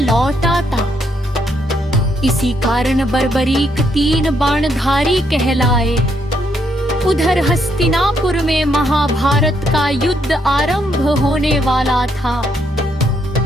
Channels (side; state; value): both; normal; correlation 0.75